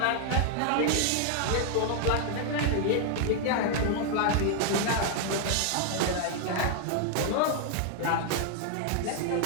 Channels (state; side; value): different; both; correlation 0.00